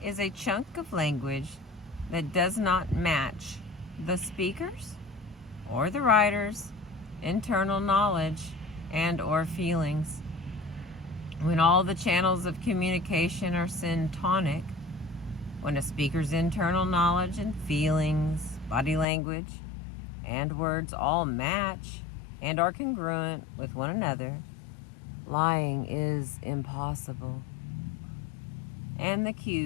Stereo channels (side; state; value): right; drops out; at 19.1 s